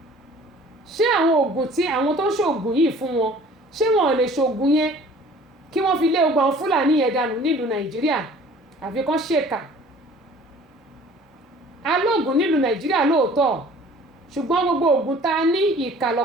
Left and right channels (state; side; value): normal; both; correlation 0.50